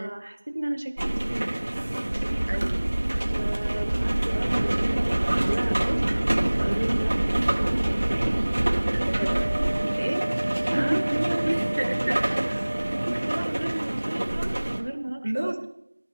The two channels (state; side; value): inverted; both; correlation -1.00